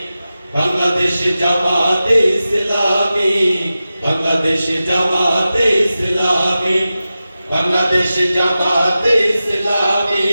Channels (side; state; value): both; inverted; correlation -0.93